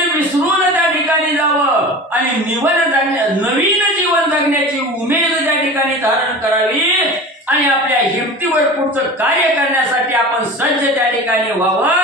विसरून त्या ठिकाणी जावं आणि नवीन जीवन जगण्याची उमेद त्या ठिकाणी धारण करावी आणि आपल्या हिमतीवर पुढचं कार्य करण्यासाठी आपण सज्ज त्या ठिकाणी व्हावं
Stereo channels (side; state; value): both; normal; correlation 0.35